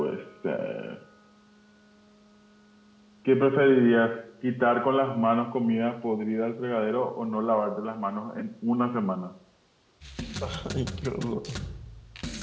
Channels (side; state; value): both; identical; correlation 1.00